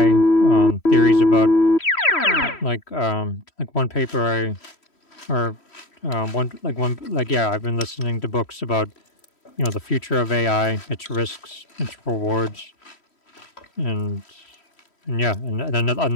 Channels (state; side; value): late; right; 3.1 ms